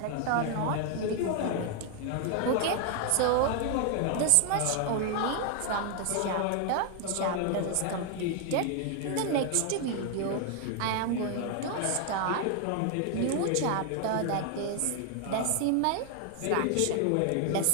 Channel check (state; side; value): different; both; correlation 0.00